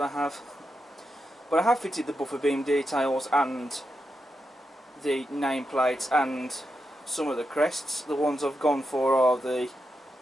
I have. But I have fitted the buffer beam details and the nameplates and some of the crests. The ones I've gone for are the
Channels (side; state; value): both; normal; correlation 0.86